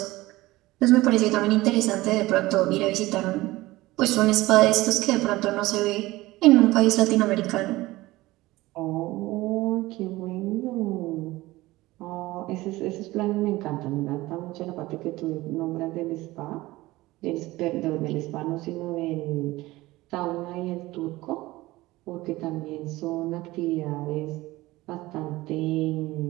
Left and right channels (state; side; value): quieter; left; 18.9 dB